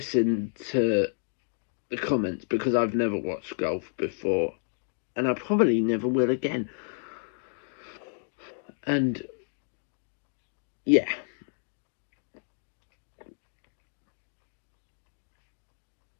to the comments, because I've never watched golf before, and I probably never will again. And yeah,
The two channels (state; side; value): silent; right; digital silence